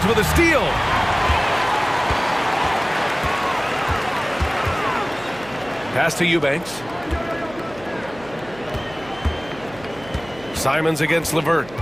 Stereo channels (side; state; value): right; noise; hum, 20 dB below the sound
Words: with a steal. Pass to Eubanks. Simons against LeVert.